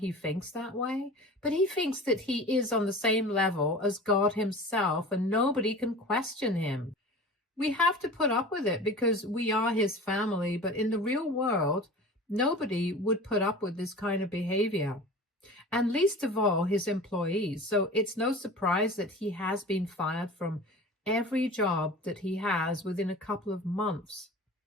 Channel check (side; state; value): both; normal; correlation 0.37